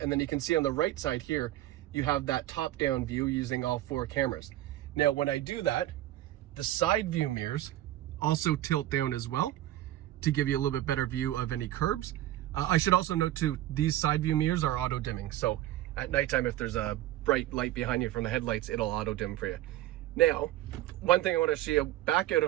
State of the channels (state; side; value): quieter; left; 14.3 dB